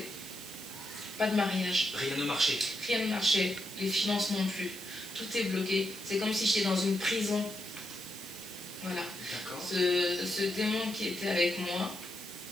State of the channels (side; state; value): right; noise; hiss, 15 dB below the sound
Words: pas de mariage. Rien ne marchait. Rien ne marchait, les finances non plus. Tout est bloqué. C'est comme si j'étais dans une prison. Voilà. D'accord. Ce démon qui était avec moi